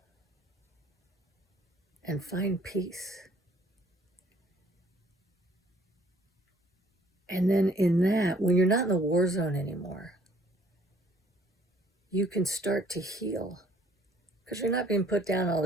and find peace. And then in that, when you're not in the war zone anymore, you can start to heal because you're not being put down all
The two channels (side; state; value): both; normal; correlation 0.60